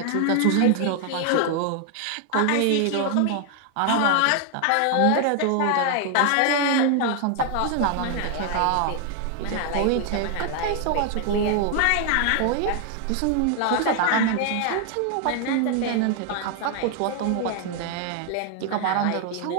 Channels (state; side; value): different; both; correlation 0.00